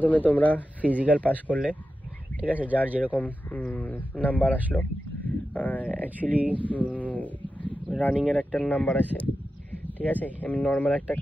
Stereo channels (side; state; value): both; normal; correlation 0.91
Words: তোমরা ফিজিক্যাল পাস করলে, ঠিক আছে, যার যেরকম নাম্বার আসলো। অ্যাকচুয়ালি রানিংয়ের একটা নাম্বার আছে, ঠিক আছে? এমনি নর্মাল একটা